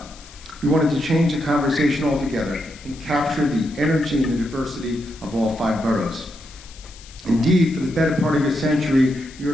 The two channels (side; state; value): left; noise; hiss, 21 dB below the sound